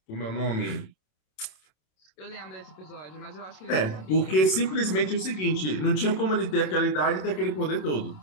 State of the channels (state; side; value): late; right; 27 ms